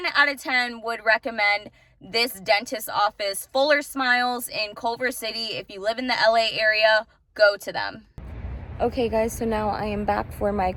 out of 10 would recommend this dentist office, Fuller Smiles in Culver City. If you live in the LA area, go to them. Okay guys, so now I am back for my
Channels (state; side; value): identical; both; correlation 1.00